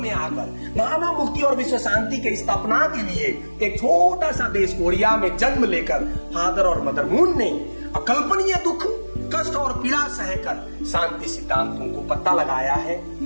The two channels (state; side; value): inverted; both; correlation -1.00